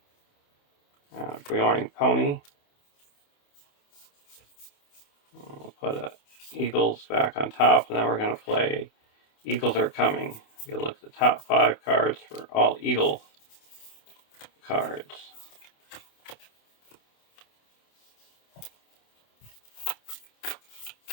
Beorn Pony. We'll put a Eagles back on top, and then we're going to play Eagles Are Coming. You look at the top 5 cards for all Eagle cards.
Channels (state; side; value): late; right; 28 ms